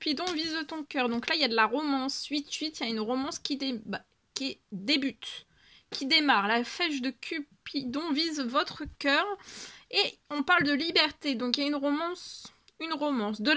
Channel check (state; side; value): identical; both; correlation 1.00